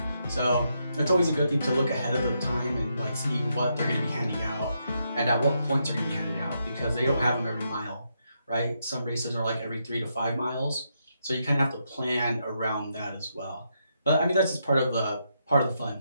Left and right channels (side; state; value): both; inverted; correlation -0.80